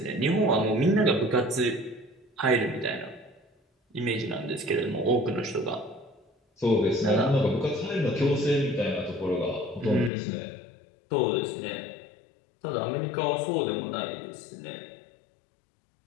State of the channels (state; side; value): drops out; right; at 10.1 s